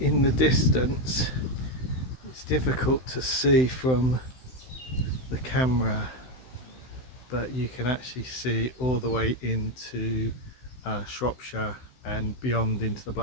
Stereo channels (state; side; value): late; right; 16 ms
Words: the distance, it's difficult to see from the camera, but you can actually see all the way into Shropshire and beyond into the